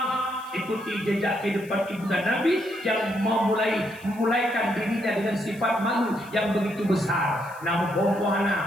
Ikuti jejak kehidupan ibunda Nabi yang memulaikan dirinya dengan sifat malu yang begitu besar. Nampung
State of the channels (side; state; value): left; noise; hiss, 24 dB below the sound